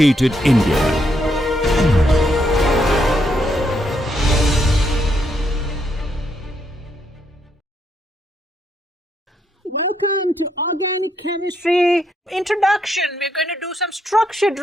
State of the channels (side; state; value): both; normal; correlation 0.76